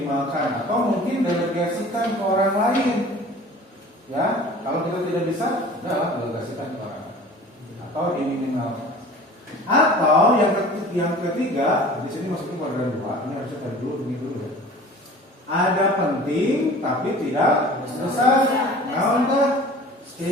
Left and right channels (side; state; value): both; normal; correlation 0.43